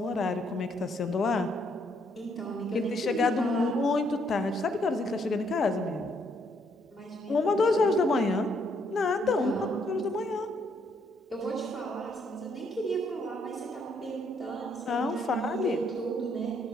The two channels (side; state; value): both; normal; correlation 0.71